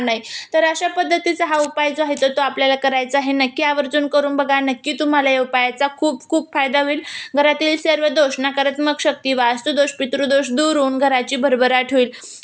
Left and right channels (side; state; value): both; identical; correlation 1.00